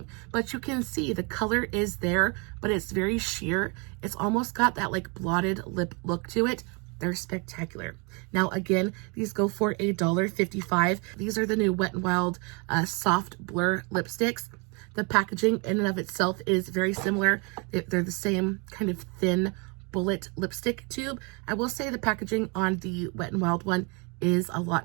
But you can see the color is there, but it's very sheer. It's almost got that like blotted lip look to it. They're spectacular. Now, again, these go for $1.55. These are the new Wet n Wild Soft Blur lipsticks. The packaging in and of itself is very similar. They're the same kind of thin bullet lipstick tube. I will say the packaging on the Wet n Wild one is a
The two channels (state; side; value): quieter; left; 32.5 dB